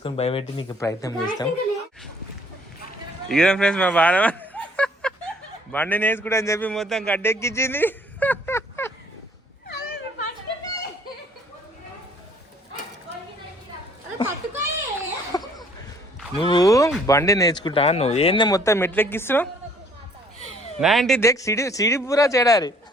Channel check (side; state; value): both; normal; correlation 0.59